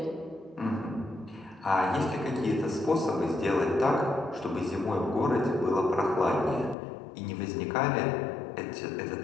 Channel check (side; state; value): right; drops out; at 6.8 s